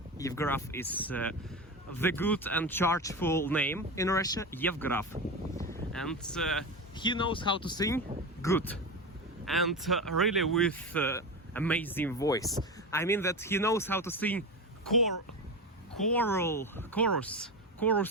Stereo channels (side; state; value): both; normal; correlation 0.21